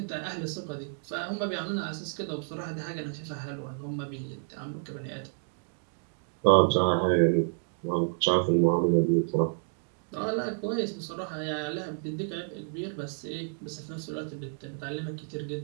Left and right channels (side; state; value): left; silent; digital silence